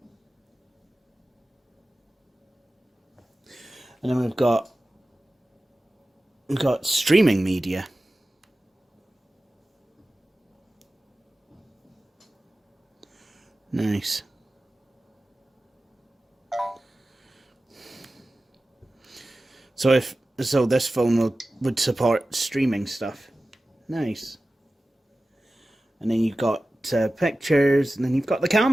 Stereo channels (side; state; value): both; normal; correlation 0.95